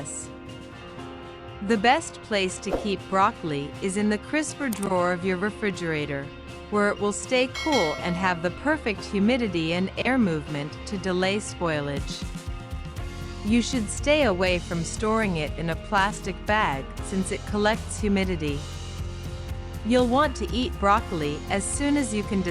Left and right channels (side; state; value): both; identical; correlation 1.00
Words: The best place to keep broccoli is in the crisper drawer of your refrigerator, where it will stay cool and have the perfect humidity and air movement to delay spoilage. You should stay away from storing it in a plastic bag since it collects humidity. You'll want to eat broccoli as soon as you can